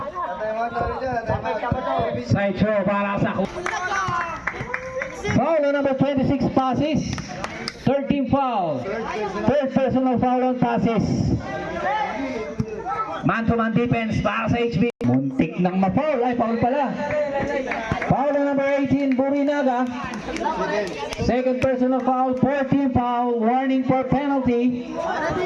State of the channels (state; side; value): identical; both; correlation 1.00